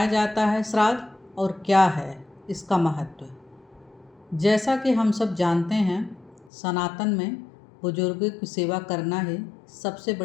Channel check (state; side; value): drops out; right; at 6.5 s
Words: जाता है श्राद्ध और क्या है इसका महत्व। जैसा कि हम सब जानते हैं, सनातन में बुजुर्गों की सेवा करना ही सबसे